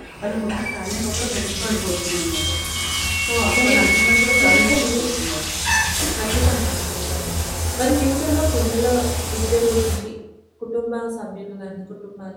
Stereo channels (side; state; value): both; identical; correlation 1.00